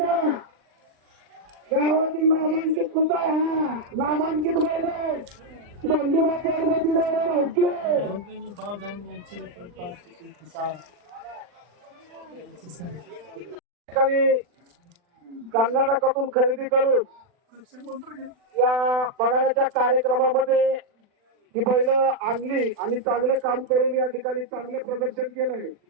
गावातील नामांकित कुठं हा नामांकित बैल गोंधळा पार्वती भाऊके कर्नाटकातून खरेदी करून या बघाण्याच्या कार्यक्रमामध्ये ही बैल आणली आणि चांगलं काम करून या ठिकाणी चांगलं प्रदर्शन केलंय.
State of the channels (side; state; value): left; late; 40 ms